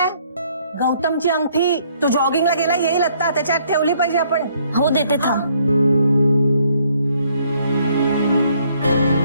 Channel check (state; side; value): inverted; both; correlation -0.66